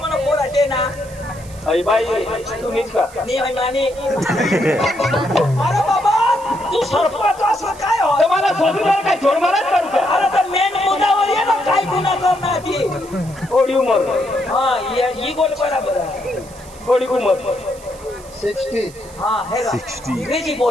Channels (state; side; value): noise; right; hiss, 21 dB below the sound